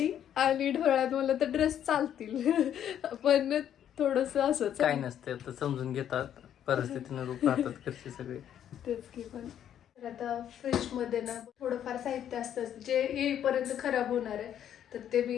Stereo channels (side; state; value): right; quieter; 10.0 dB